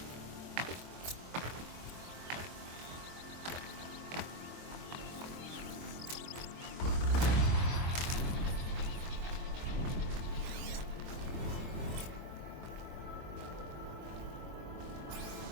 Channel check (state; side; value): late; left; 23 ms